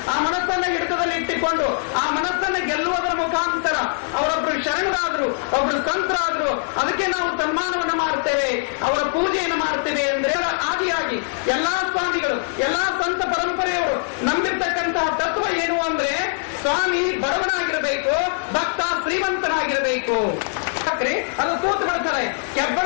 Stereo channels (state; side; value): silent; right; digital silence